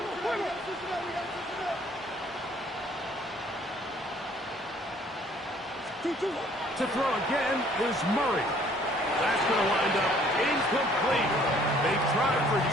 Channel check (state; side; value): normal; both; correlation 0.59